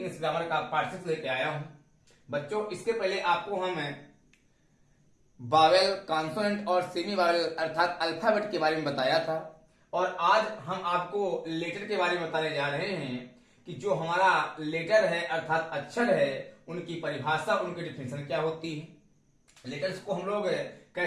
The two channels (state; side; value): identical; both; correlation 1.00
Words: ग्रामर का पार्ट 6 लेके आया हूं। बच्चों इसके पहले आपको हम बावेल, कॉन्सोनेंट और सेमी बावेल अर्थात अल्फाबेट के बारे में बताया था और आज हम आपको लेटर के बारे में बताने जा रहे हैं कि जो हमारा लेटर है अर्थात अक्षर है उनकी परिभाषा, उनकी डिफिनेशन क्या होती है। लेटर्स को हम लोग